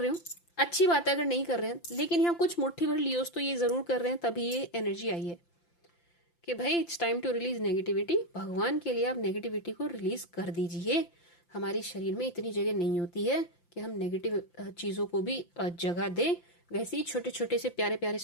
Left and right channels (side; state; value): right; late; 5.8 ms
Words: हो, अच्छी बात है अगर नहीं कर रहे हैं, लेकिन यहाँ कुछ मुट्ठी भर लियोज तो ये जरूर कर रहे हैं, तभी ये एनर्जी आई है कि भाई it's time to release negativity. भगवान के लिए आप नेगेटिविटी को रिलीज कर दीजिए। हमारे शरीर में इतनी जगह नहीं होती है कि हम नेगेटिव चीजों को भी जगह दें। वैसे ही छोटे छोटे से प्यारे प्यारे